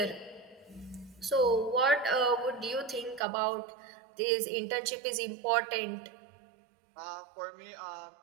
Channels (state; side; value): drops out; left; at 3.2 s